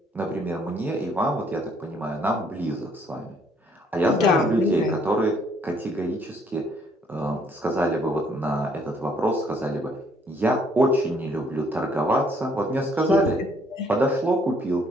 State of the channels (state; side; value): normal; both; correlation 0.65